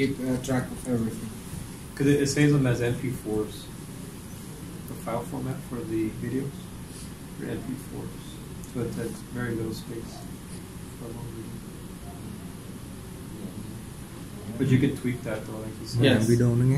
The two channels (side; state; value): both; identical; correlation 1.00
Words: track of everything. Because it saves them as MP4s. The file format for the videos are MP4s. So it takes very little space for a long video. But you could tweak that though, like you said. Yes. Làm video nó